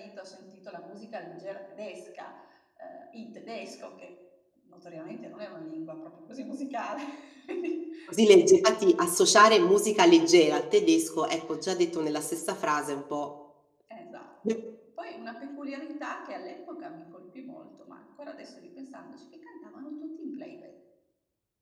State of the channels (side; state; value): both; identical; correlation 1.00